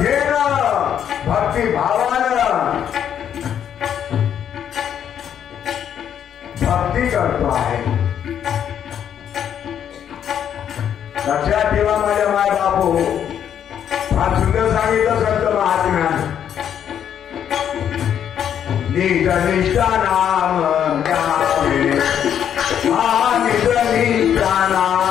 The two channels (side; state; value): right; quieter; 9.2 dB